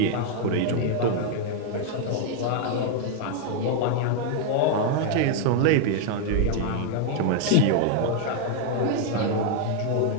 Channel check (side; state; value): both; different; correlation 0.00